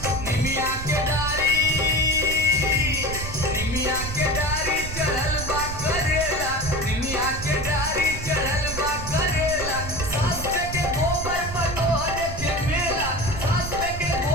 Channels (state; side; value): noise; right; rumble, 7 dB below the sound